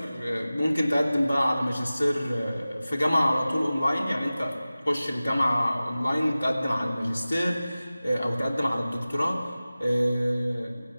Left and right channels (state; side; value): inverted; both; correlation -0.97